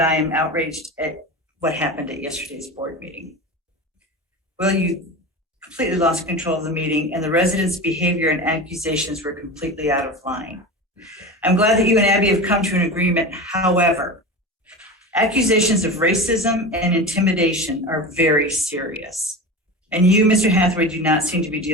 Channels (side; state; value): both; normal; correlation 0.28